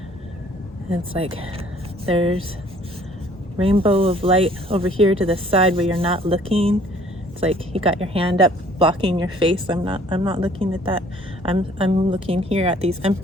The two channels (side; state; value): both; normal; correlation 0.57